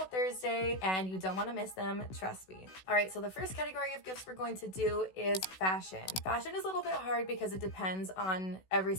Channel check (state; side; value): late; right; 16 ms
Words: Thursday and you don't want to miss them, trust me. All right, so the first category of gifts we're going to do is fashion. Fashion is a little bit hard because it depends on every